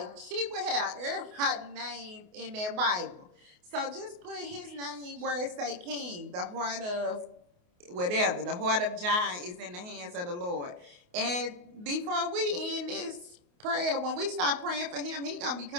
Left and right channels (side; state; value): left; late; 28 ms